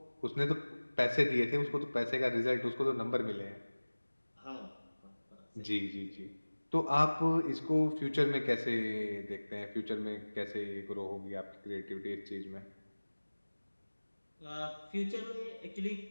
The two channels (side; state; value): both; inverted; correlation -1.00